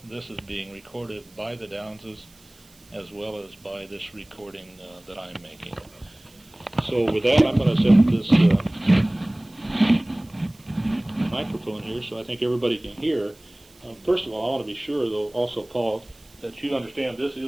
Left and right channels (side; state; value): right; noise; hiss, 27 dB below the sound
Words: this is being recorded by the Downses as well as by this recording that I'm making. So with that, I'm going to set this microphone here so I think everybody can hear. First of all, I want to be sure, though, also, Paul, that you understand this